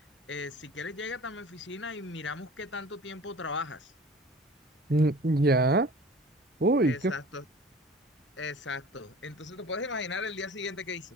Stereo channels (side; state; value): both; normal; correlation 0.43